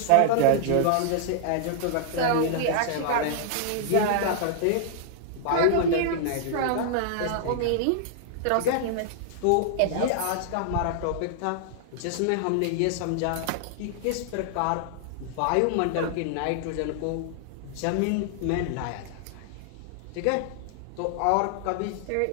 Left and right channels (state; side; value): different; both; correlation -0.01